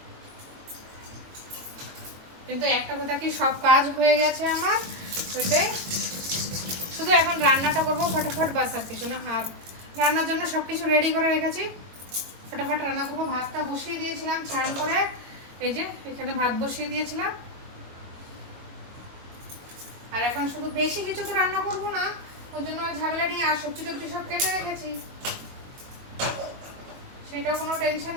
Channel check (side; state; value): left; late; 22 ms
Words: কিন্তু একটা কথা কি, সব কাজ হয়ে গেছে আমার, ওইটাই শুধু এখন রান্নাটা করবো ফটাফট, বাস আর কিছু না। আর রান্নার জন্য সব কিছু রেডি করে রেখেছি, ফটাফট রান্না করবো। ভাতটা বসিয়ে দিয়েছিলাম চান করে, এই যে এখানে ভাত বসিয়ে দিয়েছিলাম। আর এখন শুধু বেশি কিছু তো রান্না করবো না, ওই জন্য আর ঝামেলা নেই। আর সবজি টবজি সব কেটে রেখেছি, সেটাও কোনো টেনশন